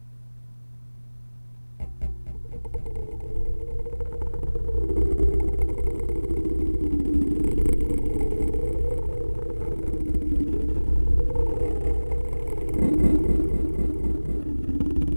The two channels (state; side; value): inverted; both; correlation -1.00